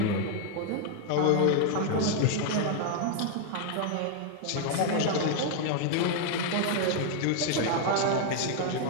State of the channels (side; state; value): both; different; correlation 0.00